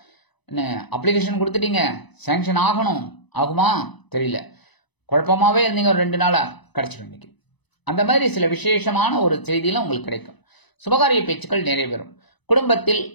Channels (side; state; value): right; late; 1.0 ms